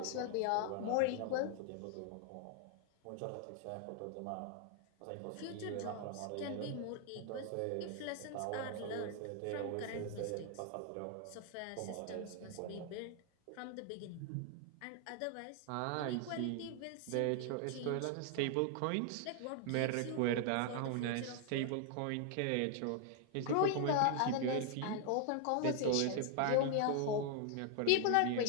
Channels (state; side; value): different; both; correlation 0.00